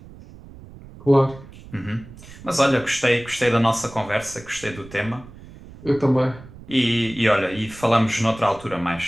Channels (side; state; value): right; noise; rumble, 18 dB below the sound